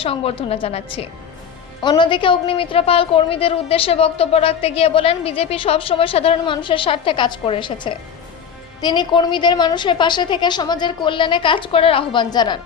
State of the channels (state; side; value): quieter; right; 7.5 dB